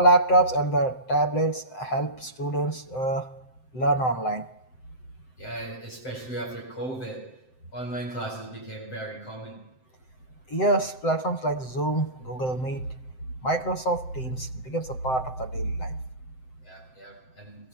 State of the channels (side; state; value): right; late; 7.8 ms